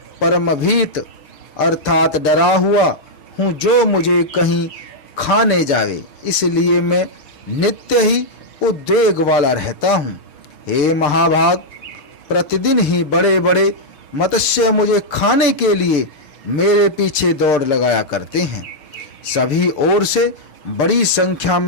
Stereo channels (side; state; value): right; late; 6.8 ms